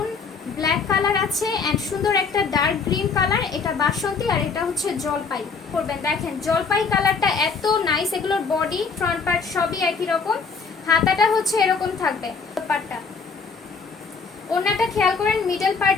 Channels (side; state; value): right; quieter; 5.1 dB